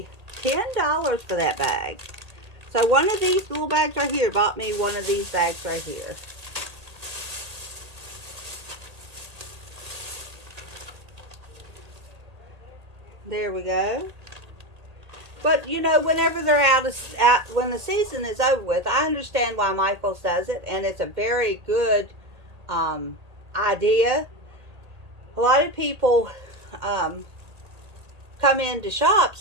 $10 for that bag. So one of these little bags right here bought me one of these bags right here. There we go. But you know, whenever they're when the season is over with, I understand why Micheals does it, and it's a very good idea. A lot of people come in to shop,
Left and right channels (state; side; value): late; left; 1.8 ms